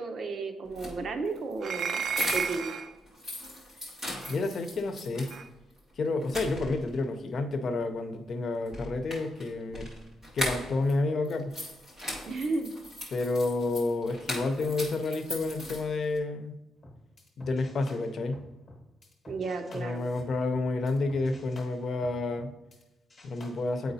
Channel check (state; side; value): normal; both; correlation 0.82